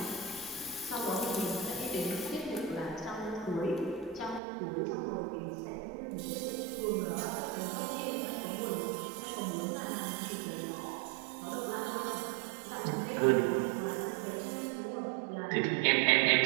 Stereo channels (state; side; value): drops out; left; at 4.4 s